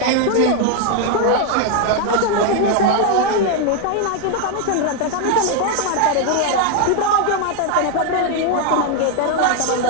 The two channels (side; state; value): both; different; correlation 0.01